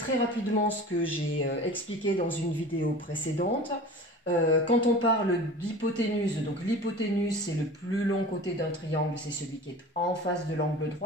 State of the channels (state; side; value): normal; both; correlation 0.38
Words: rapidement ce que j'ai expliqué dans une vidéo précédente. Quand on parle d'hypoténuse, donc l'hypoténuse c'est le plus long côté d'un triangle, c'est celui qui est en face de l'angle